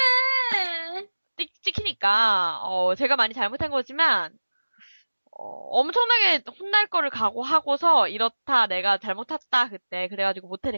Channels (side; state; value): both; inverted; correlation -1.00